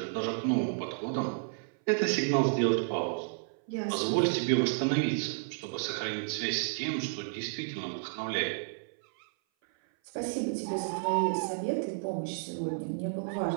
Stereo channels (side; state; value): left; silent; 57 dB below the other